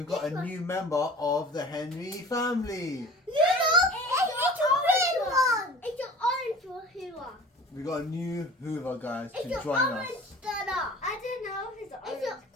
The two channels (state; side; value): normal; both; correlation 0.42